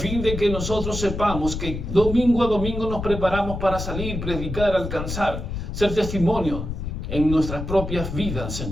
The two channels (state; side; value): noise; left; rumble, 6 dB below the sound